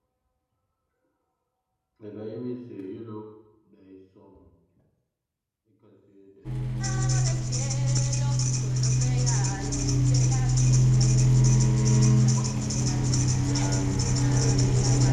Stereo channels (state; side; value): identical; both; correlation 1.00